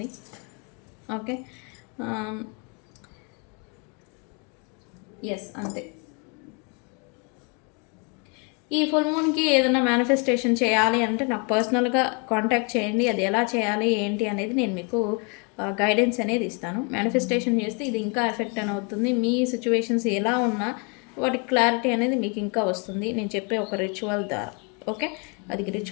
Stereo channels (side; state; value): right; quieter; 33.8 dB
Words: ఓకే, ఎస్, అంతే. ఈ ఫుల్ మూన్కి ఏదైనా మేనిఫెస్టేషన్ చేయాలి అంటే నాకు పర్సనల్గా కాంటాక్ట్ చేయండి. అది ఎలా చేయాలి ఏంటి అనేది నేను మీకు గైడెన్స్ అనేది ఇస్తాను. మేనిఫెస్టేషన్ చేస్తే ఇది ఇంకా ఎఫెక్ట్ అని అవుతుంది. మీ సిచ్యువేషన్స్ ఎలా ఉన్నా వాటి క్లారిటీ అనేది మీకు ఇంకా వస్తుంది నేను చెప్పే ఒక రిచువల్ ద్వారా. ఓకే, అది